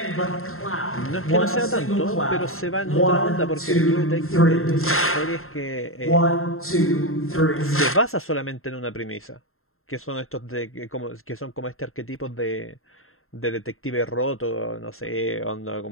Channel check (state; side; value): late; right; 0.61 ms